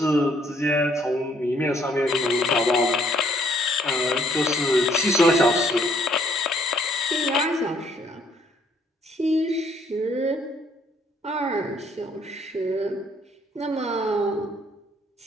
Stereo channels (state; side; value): normal; both; correlation 0.65